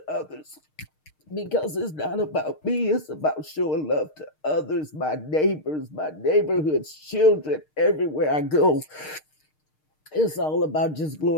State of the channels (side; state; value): right; late; 6.5 ms